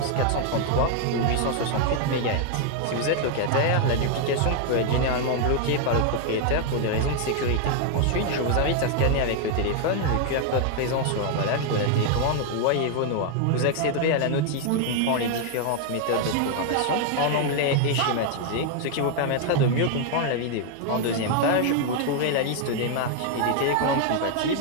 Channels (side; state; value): both; different; correlation 0.00